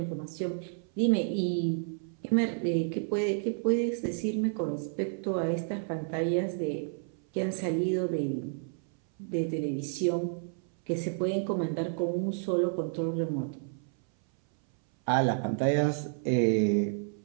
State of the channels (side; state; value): left; silent; 58 dB below the other